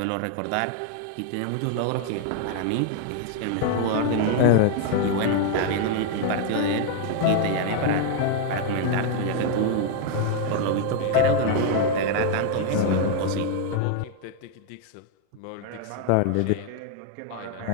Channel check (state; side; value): different; both; correlation 0.00